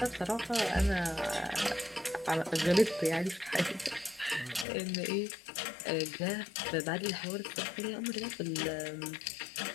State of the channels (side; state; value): right; drops out; at 4.7 s